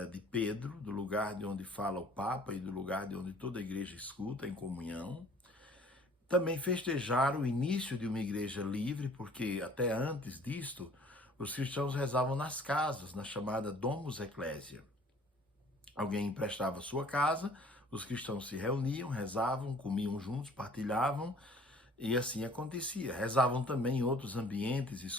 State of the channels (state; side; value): normal; both; correlation 0.53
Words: de Pedro, do lugar de onde fala o Papa e do lugar de onde toda a igreja escuta em comunhão. Também festejar o início de uma igreja livre, porque até antes disto, os cristãos rezavam nas casas, na chamada Domus Ecclesia. Alguém emprestava sua casa, os cristãos se reuniam, rezavam, comiam juntos, partilhavam, e assim acontecia. Rezavam também em outros ambientes